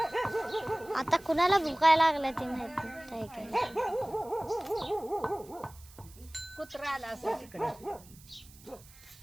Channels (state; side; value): noise; right; hiss, 23 dB below the sound